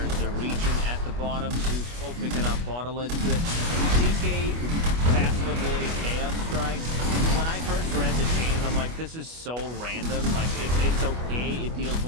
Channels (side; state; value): left; late; 25 ms